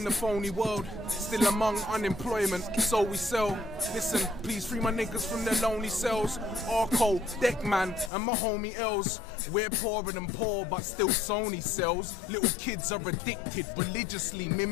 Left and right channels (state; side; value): drops out; right; at 8.1 s